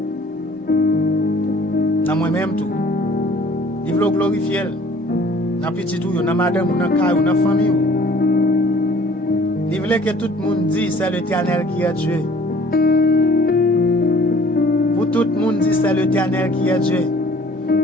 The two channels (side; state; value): both; normal; correlation 0.53